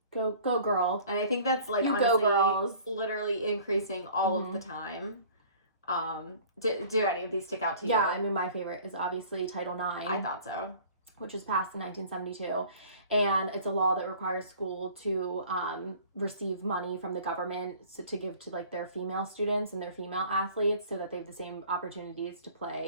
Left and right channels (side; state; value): both; inverted; correlation -0.49